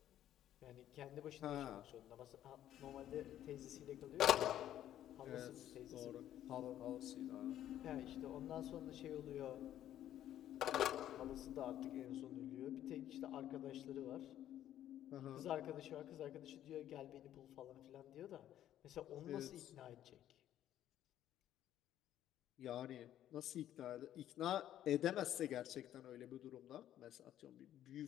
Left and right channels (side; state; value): right; quieter; 11.8 dB